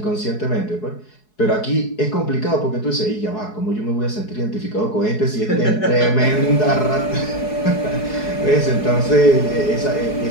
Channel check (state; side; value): late; right; 4.7 ms